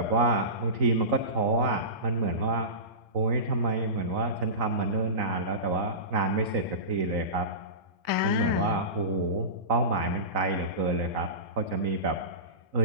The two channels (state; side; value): late; left; 3.9 ms